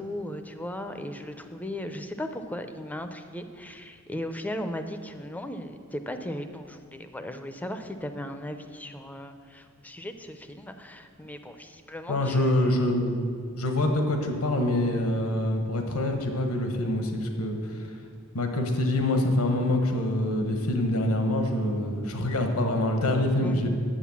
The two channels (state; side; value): normal; both; correlation 0.56